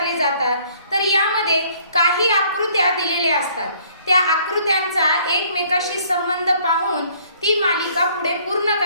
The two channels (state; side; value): inverted; both; correlation -0.60